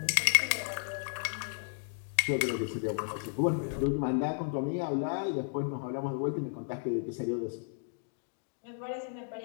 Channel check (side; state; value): right; silent; digital silence